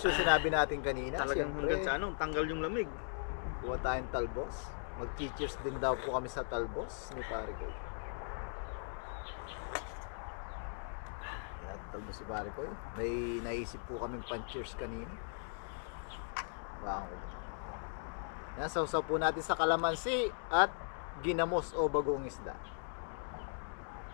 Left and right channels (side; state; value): right; silent; digital silence